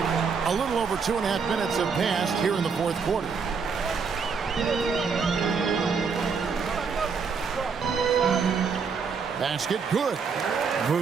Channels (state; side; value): quieter; left; 5.6 dB